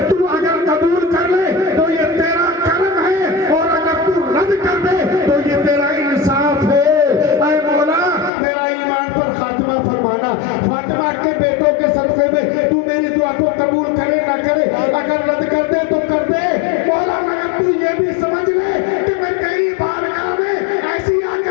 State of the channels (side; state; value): right; drops out; at 8.3 s